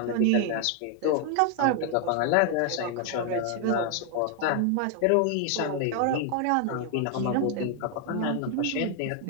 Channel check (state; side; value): different; both; correlation 0.00